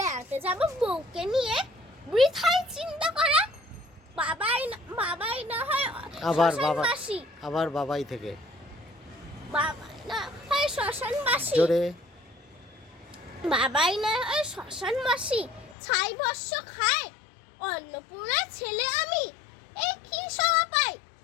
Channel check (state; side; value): drops out; right; at 15.8 s